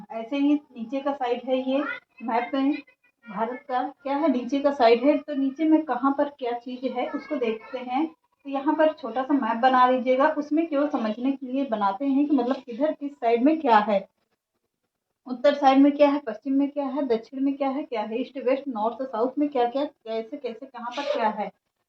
ऐसे ही नीचे का साइड है। ये मैप में भारत का क्या है, नीचे का साइड है। तो नीचे में कहाँ पर क्या चीज़ है उसको देखते हैं। तो यहाँ पर छोटा सा मैप बना लीजिएगा। उसमें केवल समझने के लिए बनाते हैं कि मतलब किधर किस साइड में क्या है, उत्तर साइड में क्या है, पश्चिम में क्या है, दक्षिण में क्या है, ईस्ट वेस्ट नॉर्थ साउथ में क्या क्या, कैसे कैसे कहाँ पर क्या है।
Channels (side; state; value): both; identical; correlation 1.00